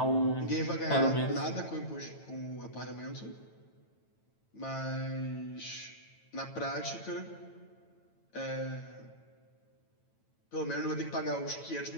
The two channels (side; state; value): right; late; 9.0 ms